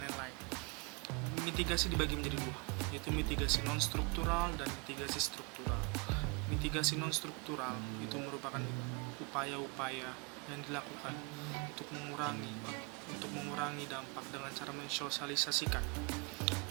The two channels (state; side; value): quieter; left; 31.5 dB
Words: Mitigasi dibagi menjadi dua, yaitu mitigasi non-struktural dan mitigasi struktural. Mitigasi non-struktural itu merupakan upaya-upaya yang dilakukan untuk mengurangi dampak dengan cara mensosialisasikan